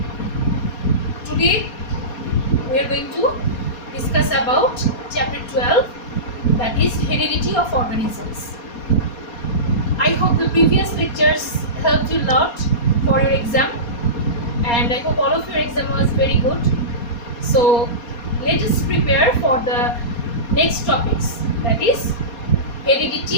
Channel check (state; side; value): late; right; 4.2 ms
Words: Today we are going to discuss about chapter 12, that is heredity of organisms. I hope the previous lectures helped you a lot for your exam, and I hope all of your exam was very good. So let us prepare for the next topics, that is